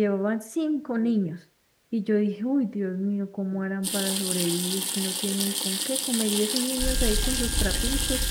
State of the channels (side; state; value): both; identical; correlation 1.00